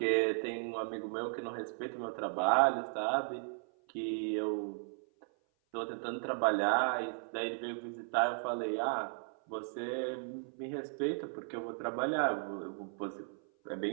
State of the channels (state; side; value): silent; left; 54 dB below the other